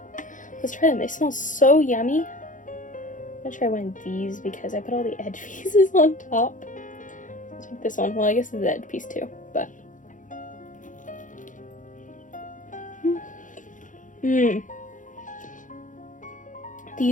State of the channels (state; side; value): late; right; 0.37 ms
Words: let's try them. They smell so yummy. I'm gonna try one of these because I put all the edge pieces on top. Let's take this one. Well, I guess it's the edge piece too, but